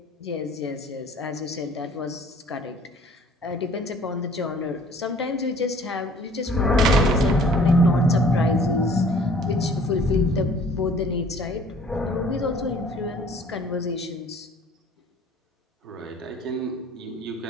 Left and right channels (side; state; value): both; normal; correlation 0.53